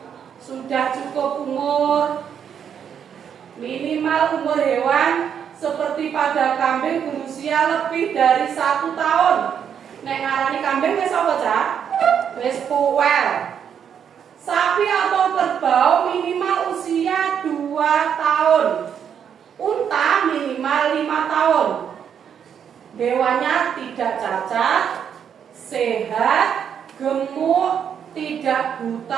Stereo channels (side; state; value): left; quieter; 8.1 dB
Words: Sudah cukup umur. Minimal umur hewan seperti pada kambing berusia lebih dari 1 tahun. Nek ngarani kambing wis apa, Cak? Wis puwel. Sapi atau kerbau minimal usia 2 tahun. Unta minimal 5 tahun. Hewannya tidak cacat, sehat, gemuk, tidak